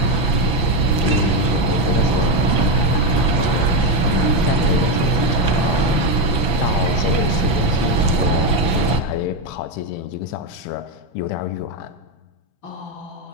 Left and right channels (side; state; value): right; late; 6.0 ms